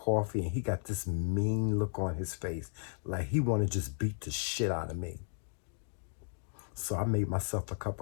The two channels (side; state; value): right; silent; digital silence